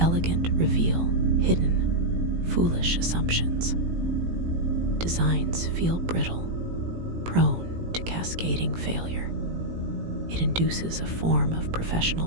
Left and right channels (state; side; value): late; left; 18 ms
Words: reveal hidden, foolish assumptions. Designs feel brittle, prone to cascading failure. It induces a form of